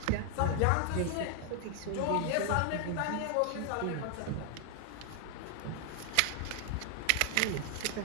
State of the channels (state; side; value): different; both; correlation 0.00